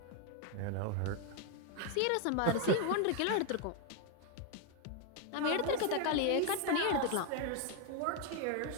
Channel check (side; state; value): both; different; correlation 0.01